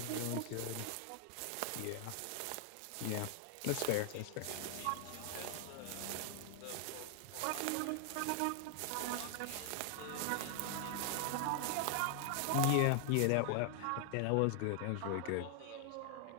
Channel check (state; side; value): different; both; correlation 0.00